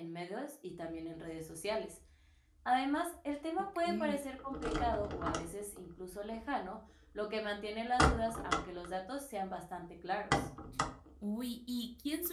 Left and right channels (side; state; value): both; identical; correlation 1.00